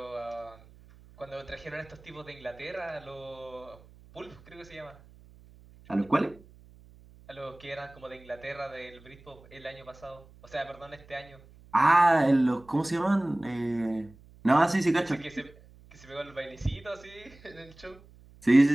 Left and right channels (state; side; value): noise; right; hum, 24 dB below the sound